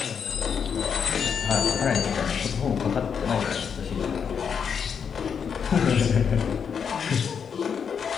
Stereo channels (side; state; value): right; quieter; 6.9 dB